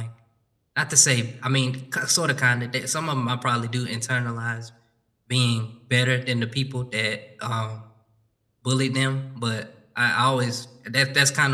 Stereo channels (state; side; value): identical; both; correlation 1.00